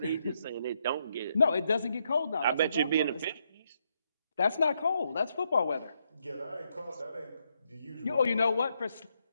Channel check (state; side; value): inverted; both; correlation -0.78